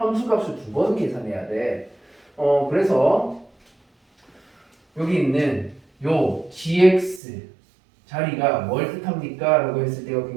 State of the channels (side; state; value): left; drops out; at 7.2 s